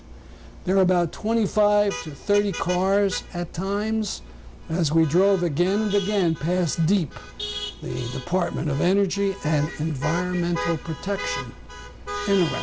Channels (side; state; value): both; identical; correlation 1.00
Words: There were about 25 to 30 cars at times as we drove again and again past Deep, the Department of Energy and Environmental Protection, and